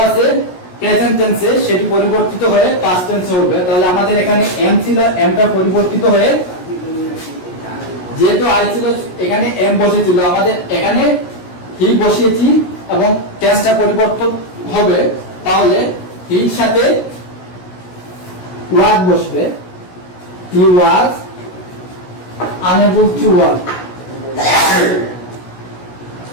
আছে প্রেজেন্ট টেন্সে, সেটি পরিবর্তিত হয়ে পাস্ট টেন্সে হবে। তাহলে আমাদের এখানে এম ছিল, এমটা পরিবর্তিত হয়ে যেহেতু আই ছিল এখানে এম বসেছিল, আমাদের এখানে হি বসিয়েছি এবং টেন্সটা পরিবর্তন হবে। তাহলে হির সাথে ওয়াজ বসবে, he was unable to work,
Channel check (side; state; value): right; late; 17 ms